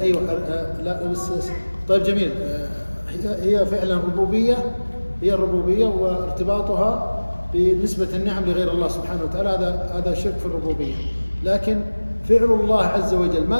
أيوة لا بس طيب جميل. هي فعلا ربوبية، هي الربوبية وارتباطها بنسبة النعم لغير الله سبحانه وتعالى هذا شرك في الربوبية. لكن فعل الله عز وجل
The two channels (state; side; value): inverted; both; correlation -1.00